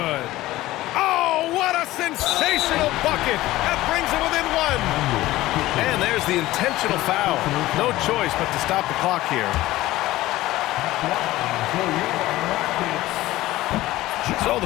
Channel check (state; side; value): quieter; right; 16.8 dB